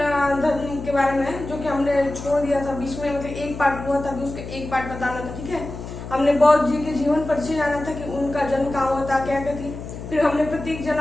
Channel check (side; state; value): left; noise; hum, 10 dB below the sound